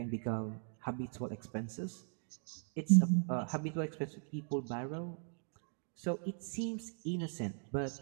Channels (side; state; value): left; silent; 52 dB below the other